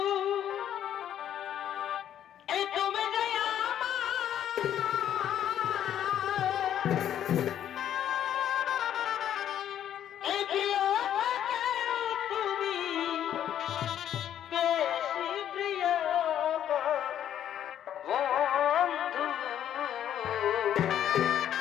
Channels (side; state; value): right; quieter; 10.4 dB